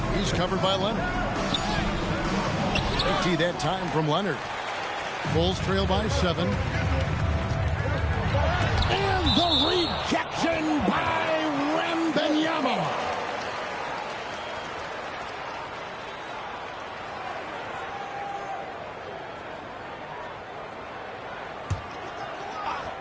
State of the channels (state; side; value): identical; both; correlation 1.00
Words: He's covered by Leonard. They tee that time from Leonard. Bulls trail by 7. And the rejection by Wembanyama.